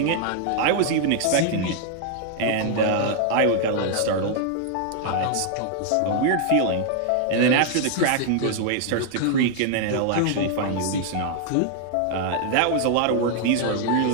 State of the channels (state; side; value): different; both; correlation 0.00